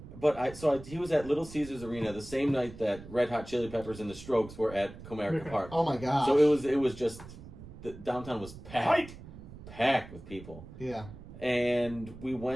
But he was at Little Caesars Arena the same night that Red Hot Chili Peppers and the Strokes were at Comerica Okay. Park. Oh my gosh. So it was just the downtown was packed with people, Yeah. and we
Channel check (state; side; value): noise; right; rumble, 15 dB below the sound